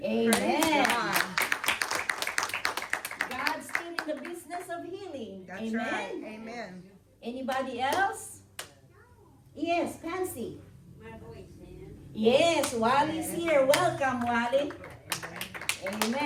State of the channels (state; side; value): identical; both; correlation 1.00